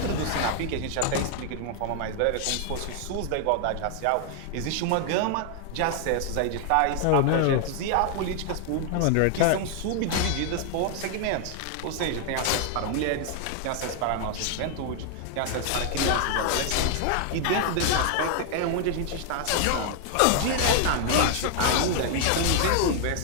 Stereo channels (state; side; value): different; both; correlation 0.00